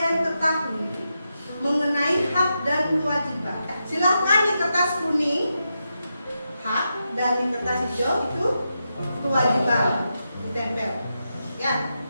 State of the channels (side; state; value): both; inverted; correlation -0.87